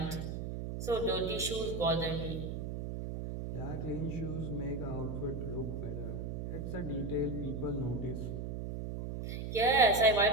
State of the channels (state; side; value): noise; right; hum, 5 dB below the sound